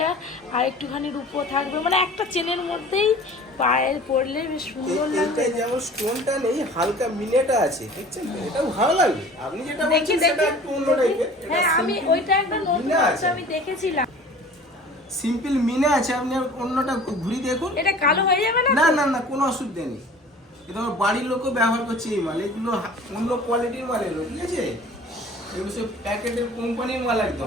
আর একটুখানি রূপো থাকবে মানে একটা চেনের মধ্যেই পায়ে পরলে বেশ সুন্দর লাগবে এটা যেমন স্টোনটা নেই হালকা মিনেটা আছে দেখছেন তো? এটাও ভালো লাগবে আপনি যেটা বলছেন সেটা একটু অন্য টাইপের হ্যাঁ আমি ওইটা একটা নতুন মিনা আছে আছে। আমি দেখেছিলাম সিম্পল মিনে আছে আপনি আর অন্যটা ঘুরি দেখুন এটা কালো হয়ে যাবে না না না না কোনো অসুবিধা নেই এটা আমার বাড়ির লোকও ব্যবহার করছে এই মাল এগুলো অন্য কোয়ালিটির মাল এগুলো ঠিক আছে এগুলো সব প্যাকেটের কোম্পানির মাল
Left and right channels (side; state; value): both; normal; correlation 0.45